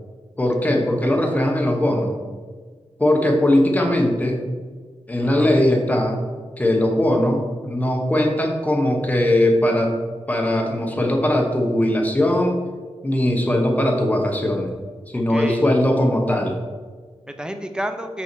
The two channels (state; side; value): normal; both; correlation 0.90